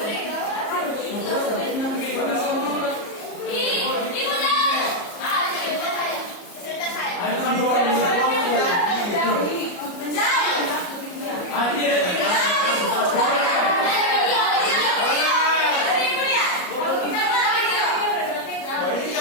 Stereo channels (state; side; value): late; right; 34 ms